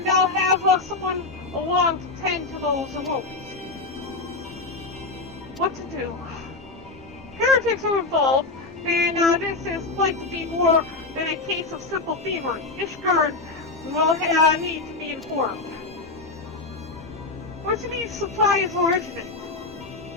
I'll have someone along to tend to those wounds. What to do? Heretics are involved, and this is likely to be more than a case of simple thievery. Ishgard will need to be informed. Where do these supplies originate?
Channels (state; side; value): quieter; right; 3.5 dB